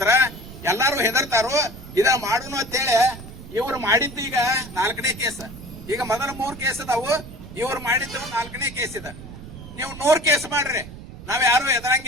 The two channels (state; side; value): noise; right; rumble, 14 dB below the sound